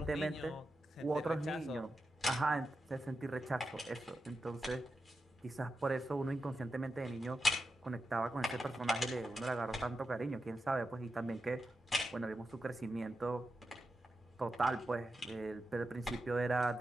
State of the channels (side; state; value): both; normal; correlation 0.89